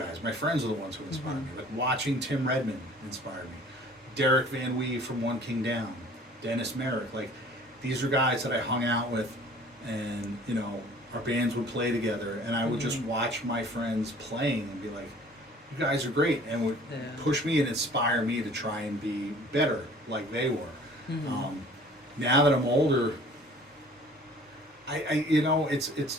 My friends are the ones who inspired me. Like watching Tim Redmond inspired me. Derek Van Wee from One King Down. Dennis Merrick. Like, these are guys that I hung out with, and our bands would play together, and I would just watch my friends playing and be like, you guys are great, and would push me and inspire me to try and be better like they were. now that I'm older, you know, at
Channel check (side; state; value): both; normal; correlation 0.50